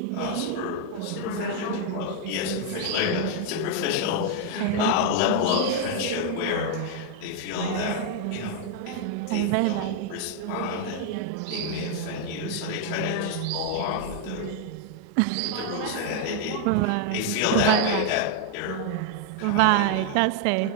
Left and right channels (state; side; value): different; both; correlation 0.00